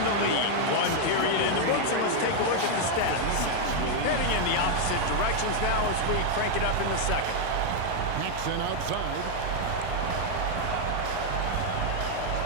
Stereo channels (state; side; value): different; both; correlation 0.00